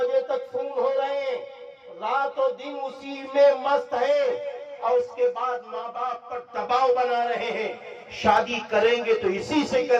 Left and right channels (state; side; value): identical; both; correlation 1.00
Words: تک فون ہو رہے ہیں، رات و دن اسی میں مست ہے، اور اس کے بعد ماں باپ پر دباؤ بنا رہے ہیں، شادی کریں گے تو اسی سے